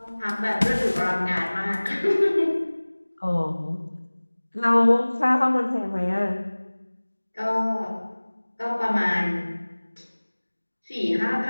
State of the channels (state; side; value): inverted; both; correlation -1.00